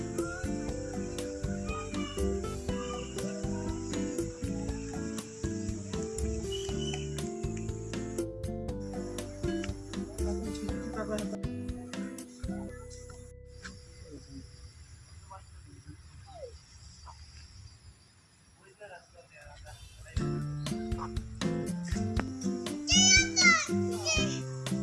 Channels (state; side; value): identical; both; correlation 1.00